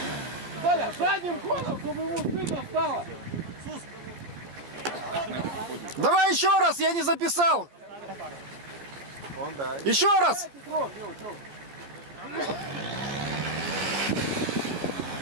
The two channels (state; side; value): late; left; 14 ms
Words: Коля, задним ходом, чтобы ему стыдно стало. Давай еще раз, я не записал. Еще раз.